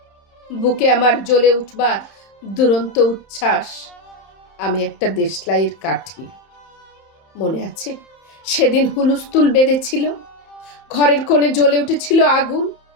বুকে আমার জ্বলে উঠবার দুরন্ত উচ্ছ্বাস। আমি একটা দেশলাইয়ের কাঠি। মনে আছে সেদিন হুলুস্থুল বেঁধেছিল, ঘরের কোণে জ্বলে উঠেছিল আগুন।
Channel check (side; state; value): right; late; 31 ms